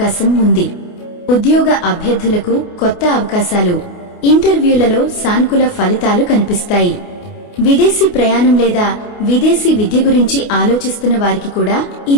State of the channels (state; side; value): late; right; 28 ms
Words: ఉంది. ఉద్యోగ అభ్యర్థులకు కొత్త అవకాశాలు, ఇంటర్వ్యూలలో సానుకూల ఫలితాలు కనిపిస్తాయి. విదేశీ ప్రయాణం లేదా విదేశీ విద్య గురించి ఆలోచిస్తున్న వారికి కూడా